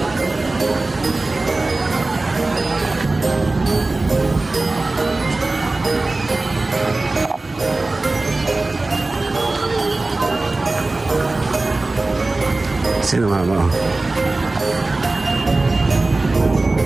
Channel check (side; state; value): left; quieter; 3.2 dB